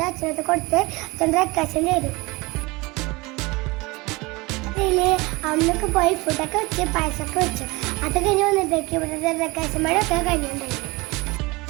അച്ഛനൊക്കെ കൊടുത്ത് അച്ഛൻ ഡെക്കറേഷൻ ചെയ്തു. അന്നൊക്കെ പോയി ഫുഡൊക്കെ വെച്ച് പായസമൊക്കെ വെച്ചു. അത് കഴിഞ്ഞ് വന്നപ്പോഴേക്കും ഇവിടെ ഡെക്കറേഷൻ മഴയൊക്കെ കഴിഞ്ഞിട്ടുണ്ടായിരുന്നു.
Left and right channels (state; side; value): quieter; left; 23.7 dB